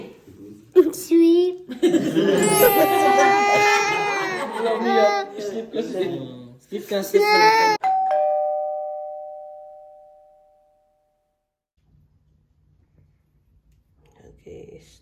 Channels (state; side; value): identical; both; correlation 1.00